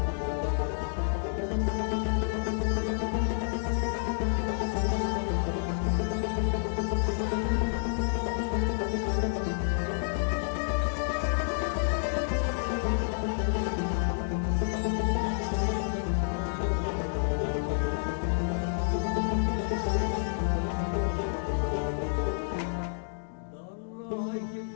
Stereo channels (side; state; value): right; silent; digital silence